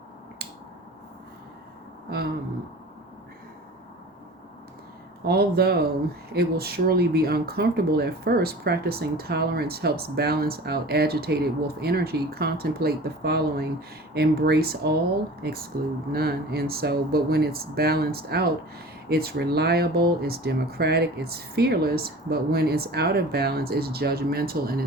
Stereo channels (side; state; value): both; normal; correlation 0.40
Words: although it will surely be uncomfortable at first, practicing tolerance helps balance out agitated wolf energy. Contemplate the following: embrace all, exclude none. And so, but when it's balanced out, it's reliable, it's democratic, it's fearless. But when it's out of balance, it's judgmental and